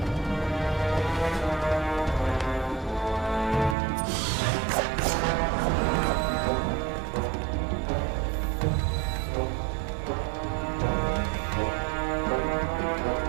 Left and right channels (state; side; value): drops out; left; at 3.8 s